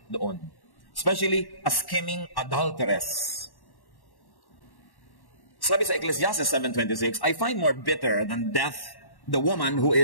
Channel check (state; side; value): late; right; 1.1 ms